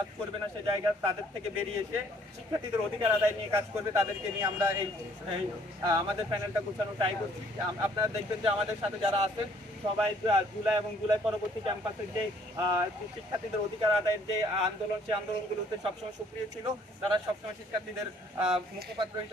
করবে না, সেই জায়গা তাদের থেকে বেরিয়ে এসে শিক্ষার্থীদের অধিকার আদায় নিয়ে কাজ করবে। তাদেরকে নিয়ে আমরা এই আমাদের প্যানেলটা গোছানো ট্রাই করছি। আপনারা দেখবেন যে আমাদের সাথে যারা আছেন সবাই জুলাই এবং জুলাই পরবর্তী ক্যাম্পাসের যে শিক্ষার্থীদের অধিকার আদায়ের যে আন্দোলন, সেই আন্দোলনগুলোতে সবসময় সক্রিয় ছিল। তারা সবসময় শিক্ষার্থীদের মুখপাত্র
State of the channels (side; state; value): both; normal; correlation 0.61